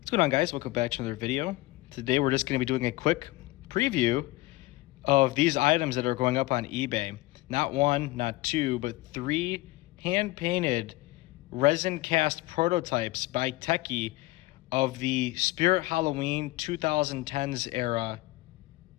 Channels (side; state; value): right; quieter; 19.6 dB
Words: What's going on, guys? Welcome back to another video. Today we're just going to be doing a quick preview of these items that are going up on eBay. Not one, not two, but three hand-painted resin cast prototypes by Tekky of the Spirit Halloween 2010s era